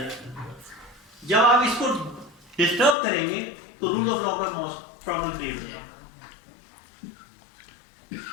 ہے. جب آپ اس کو ڈسٹرب کریں گے تو رول آف لا کا پرابلم کریٹ ہو جائے گا.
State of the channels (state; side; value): drops out; right; at 3.0 s